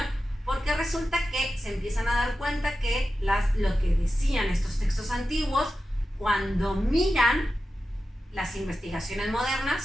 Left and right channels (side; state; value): both; normal; correlation 0.92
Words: porque resulta que se empiezan a dar cuenta que lo que decían estos textos antiguos, cuando miran las investigaciones